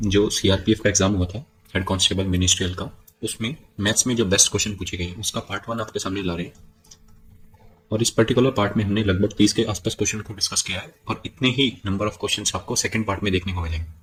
जो सीआरपीएफ का एग्जाम हुआ था, हेड कांस्टेबल मिनिस्ट्रियल का, उसमें मैथ्स में जो बेस्ट क्वेश्चन पूछे गए उसका पार्ट 1 आपके सामने ला रहे हैं। और इस पर्टिकुलर पार्ट में हमने लगभग 30 के आसपास क्वेश्चन को डिस्कस किया है और इतने ही नंबर ऑफ क्वेश्चन आपको सेकेंड पार्ट में देखने को मिलेंगे।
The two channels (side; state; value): both; identical; correlation 1.00